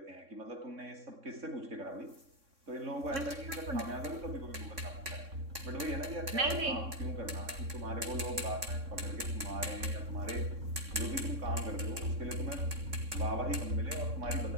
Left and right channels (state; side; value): late; left; 3.6 ms